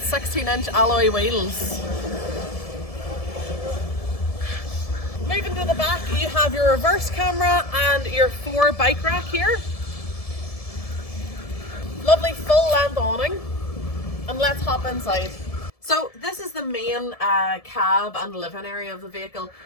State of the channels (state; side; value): late; right; 1.7 ms